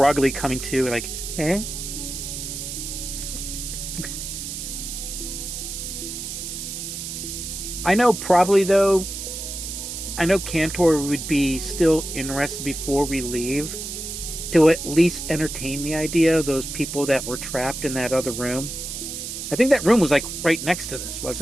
coming to, like, eh? I know probably though, I know Cantor would be still interested before we leave to at least entertain the idea of those people that were trapped in that other room. I think that room was like right next to this,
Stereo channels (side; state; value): right; noise; hiss, 7 dB below the sound